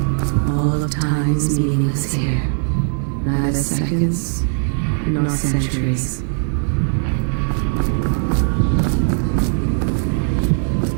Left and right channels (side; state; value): left; silent; 56 dB below the other